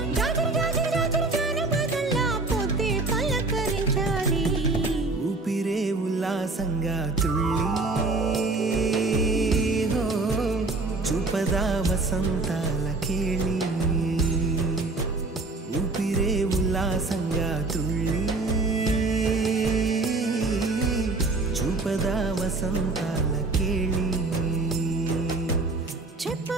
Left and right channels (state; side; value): quieter; left; 3.4 dB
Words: జాజర్ జాజర్ జాజర్ జానపదల్లా పొద్దే పలకరించాలి ఊపిరే ఉల్లాసంగా తుళ్ళి హో చూపదా వసంతాల కేళి ఊపిరే ఉల్లాసంగా తుళ్ళి చూపదా వసంతాల కేళి